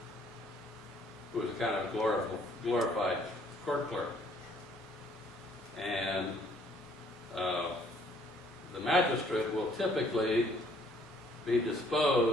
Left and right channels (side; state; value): both; normal; correlation 0.62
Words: who is a kind of glorified court clerk. And the magistrate will typically be